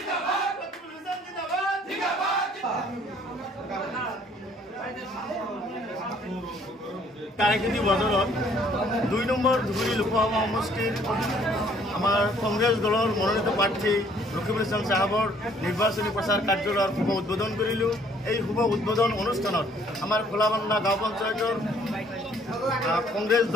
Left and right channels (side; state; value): both; normal; correlation 0.61